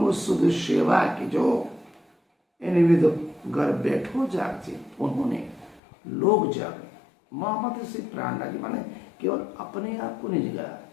सुध सेवा की जो इन विध घर बैठो जाग जी उन्होंने लोग जागे। मोहम्मद से प्राणा जी माने केवल अपने आप को नहीं जगाया,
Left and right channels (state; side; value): drops out; right; at 5.8 s